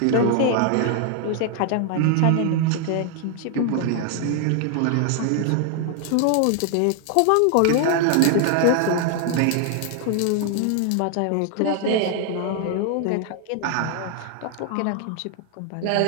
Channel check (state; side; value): different; both; correlation 0.00